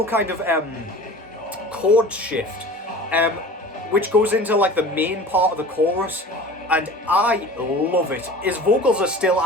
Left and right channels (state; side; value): normal; both; correlation 0.40